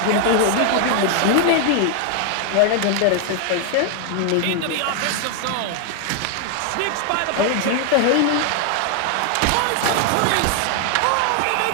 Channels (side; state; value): both; different; correlation 0.00